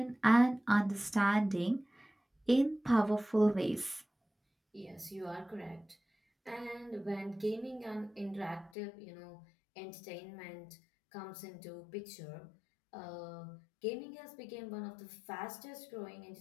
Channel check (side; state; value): right; drops out; at 8.7 s